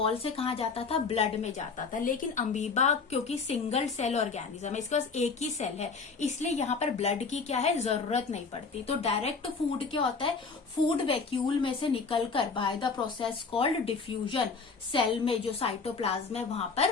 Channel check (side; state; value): right; quieter; 4.8 dB